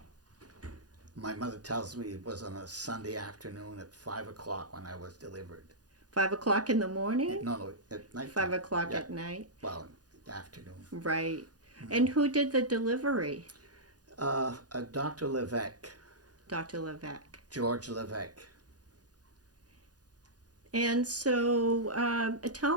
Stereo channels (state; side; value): late; left; 0.69 ms